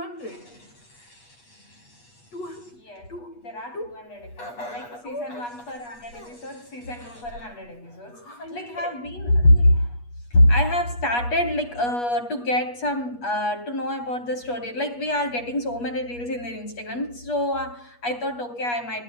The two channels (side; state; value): right; late; 8.3 ms